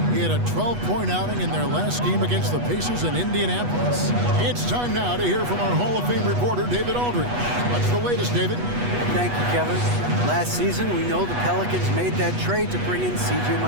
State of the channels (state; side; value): late; left; 8.2 ms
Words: He had a 12-point outing in their last game against the Pacers in Indianapolis. It's time now to hear from our Hall of Fame reporter, David Aldridge. What's the latest, David? Thank you, Kevin. Last season, we know the Pelicans made that trade to bring in C.J.